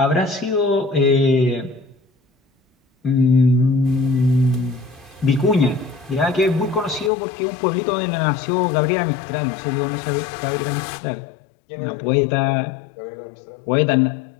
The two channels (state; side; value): drops out; right; at 7.1 s